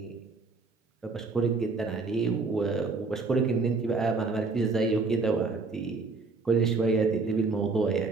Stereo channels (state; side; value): quieter; left; 4.0 dB